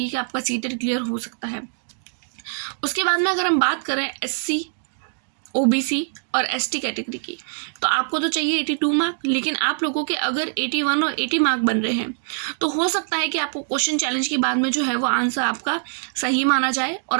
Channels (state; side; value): silent; left; digital silence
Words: कि आपका सीटेट क्लियर हो सकता है। उसके बाद में अगर हम बात करें SC OBC और ST कैटेगरी की, तो आपको तो चाहिए 82 मार्क, लेकिन आप लोगों के अगर 81 और 80 मार्क बन रहे हैं, तो हो सकता है कि आपको क्वेश्चन चैलेंज के बाद में जो है वो आंसर आपका सही माना जाए और